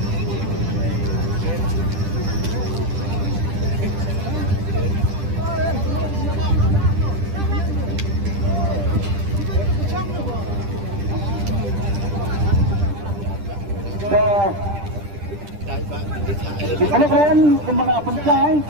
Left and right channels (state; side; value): late; left; 10 ms